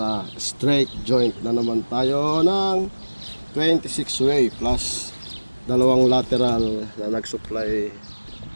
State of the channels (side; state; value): both; inverted; correlation -1.00